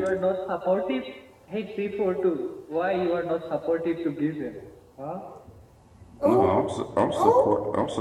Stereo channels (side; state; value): both; identical; correlation 1.00